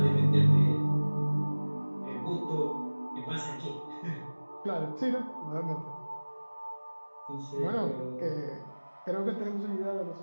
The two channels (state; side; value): inverted; both; correlation -1.00